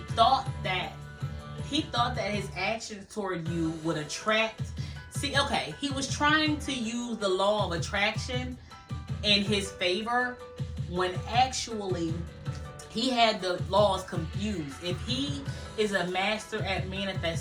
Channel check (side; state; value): both; identical; correlation 1.00